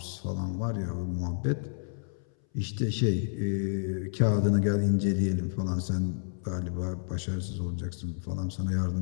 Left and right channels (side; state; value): right; silent; 58 dB below the other